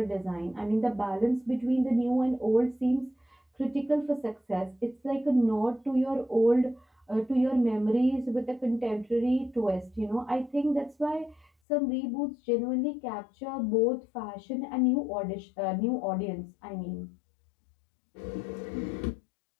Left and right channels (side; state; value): right; drops out; at 11.5 s